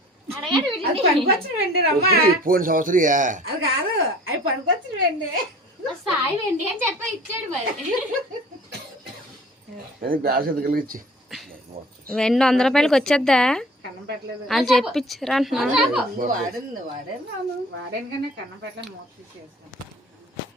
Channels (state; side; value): normal; both; correlation 0.48